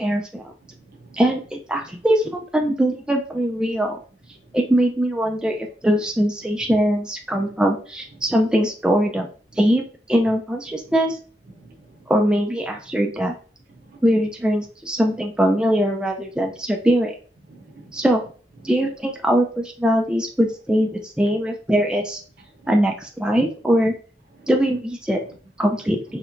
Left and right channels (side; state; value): both; normal; correlation 0.83